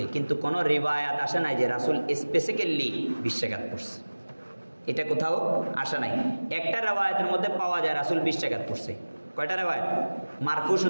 কিন্তু কোনো রিওয়ায়াত আসে নাই যে রাসূল স্পেসিক্যালি 20 রাকাত পড়ছে, এটা কোথাও আসে নাই। একটা রিওয়ায়াতের মধ্যে পাওয়া যায় রাসূল 20 রাকাত পড়ছে। কয়টা রিওয়ায়াত? মারফু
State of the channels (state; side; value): inverted; both; correlation -1.00